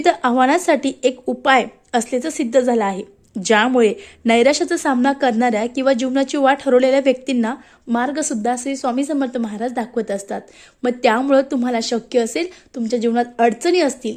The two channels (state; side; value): identical; both; correlation 1.00